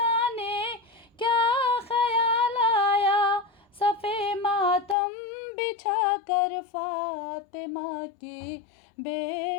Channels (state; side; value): drops out; right; at 5.0 s